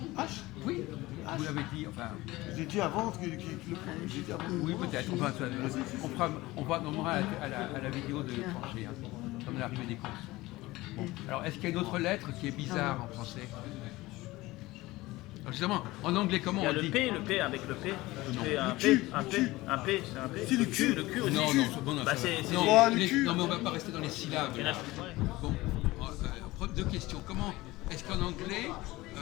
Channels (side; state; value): right; quieter; 19.4 dB